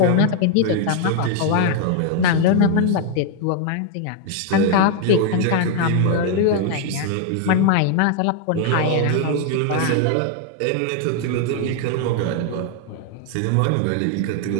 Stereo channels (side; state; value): both; different; correlation 0.00